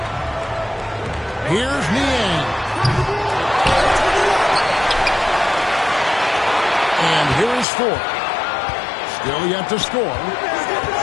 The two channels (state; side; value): drops out; right; at 7.7 s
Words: Here's Niang. And here is 4. Still yet to score.